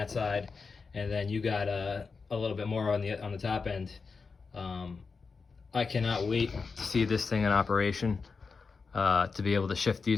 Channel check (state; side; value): quieter; right; 4.8 dB